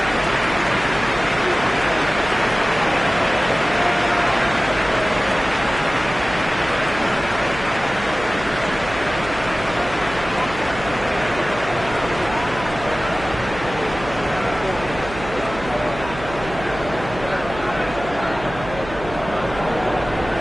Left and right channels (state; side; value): noise; right; hum, 12 dB below the sound